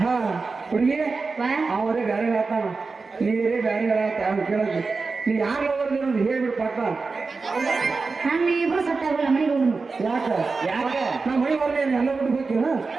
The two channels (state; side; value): quieter; left; 4.2 dB